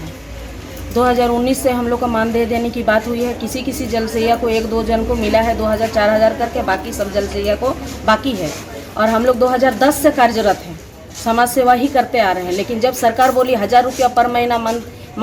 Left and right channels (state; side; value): identical; both; correlation 1.00